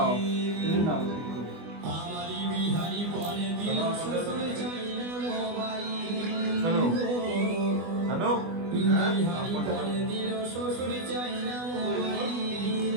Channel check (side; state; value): left; late; 24 ms